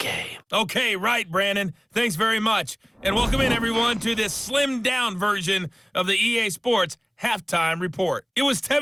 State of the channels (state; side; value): identical; both; correlation 1.00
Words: Okay, right, Brandon. Thanks very much. And welcome in, everyone, to this slimmed-down version of the EA Sports Halftime Report. It was